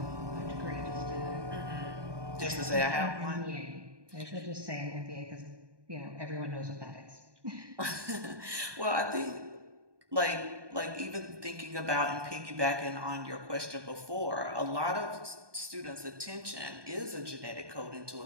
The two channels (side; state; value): left; late; 1.2 ms